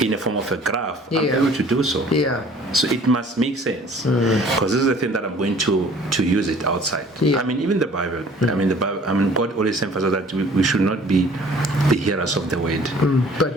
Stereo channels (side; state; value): both; normal; correlation 0.52